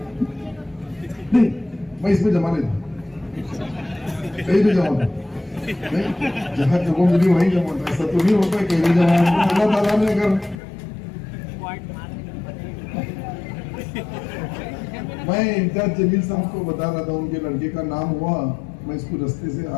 नहीं, मैं इसमें जमा नहीं था, कहीं भी जमा था नहीं, जहाँ जगह मिली वहीं जमा था। ऐसा तो नहीं होता कहीं भी जमा, अल्लाह ताला ने अगर। मैं इम्तियाज जमील साहब को बता रहा था, उनके लड़के का नाम हुआ, मैं इसको रास्ते से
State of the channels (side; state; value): right; drops out; at 10.6 s